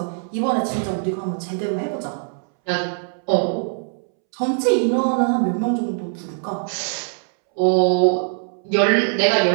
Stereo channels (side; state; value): left; silent; 65 dB below the other